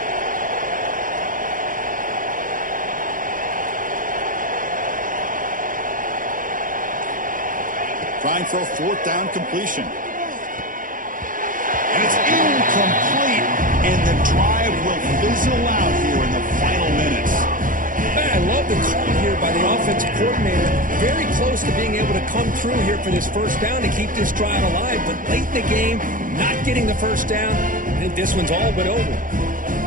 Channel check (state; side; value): late; left; 0.39 ms